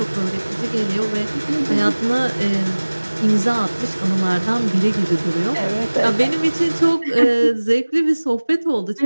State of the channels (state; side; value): inverted; both; correlation -1.00